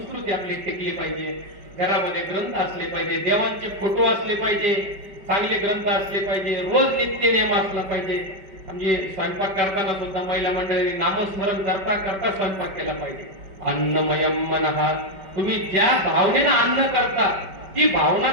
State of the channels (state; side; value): late; left; 5.2 ms